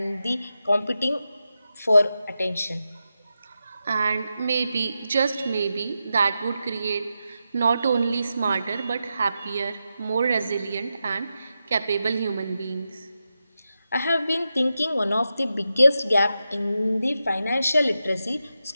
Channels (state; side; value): inverted; both; correlation -0.89